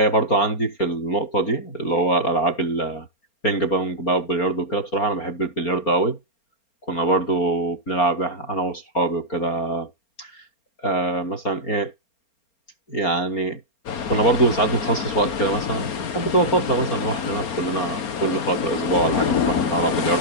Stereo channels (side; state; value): right; late; 4.3 ms